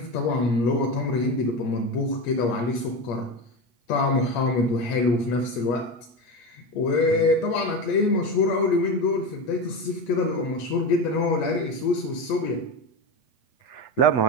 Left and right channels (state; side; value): late; right; 8.3 ms